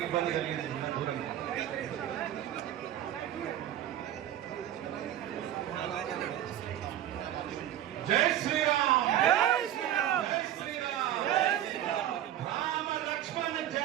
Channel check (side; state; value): left; quieter; 11.9 dB